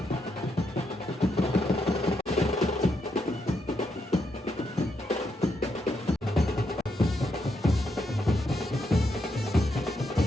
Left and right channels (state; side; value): normal; both; correlation 0.80